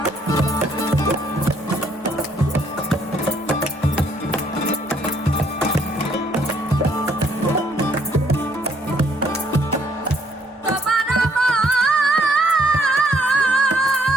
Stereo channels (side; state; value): both; normal; correlation 0.66